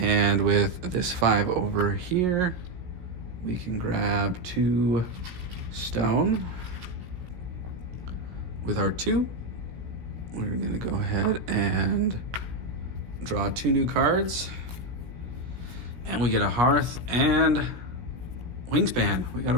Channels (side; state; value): left; late; 17 ms